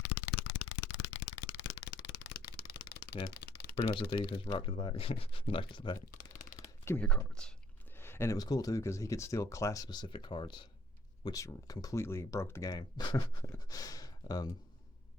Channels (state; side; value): normal; both; correlation 0.60